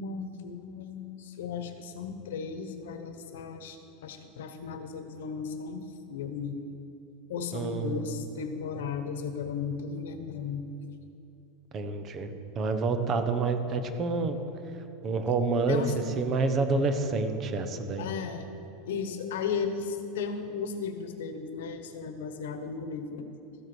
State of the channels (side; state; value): both; normal; correlation 0.25